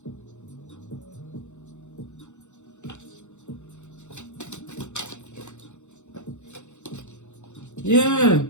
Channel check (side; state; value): right; late; 0.84 ms